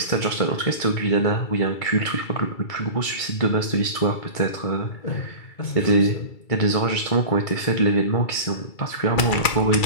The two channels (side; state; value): right; late; 2.3 ms